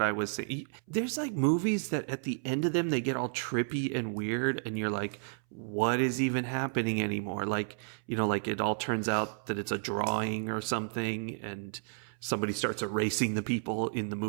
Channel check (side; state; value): left; silent; 56 dB below the other